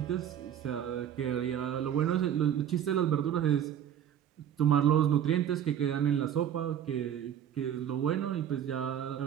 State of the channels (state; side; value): quieter; left; 9.7 dB